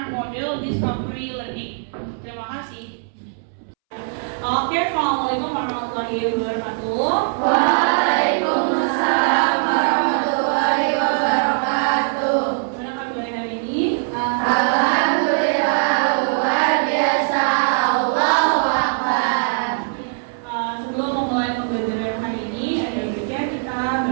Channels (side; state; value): left; silent; 65 dB below the other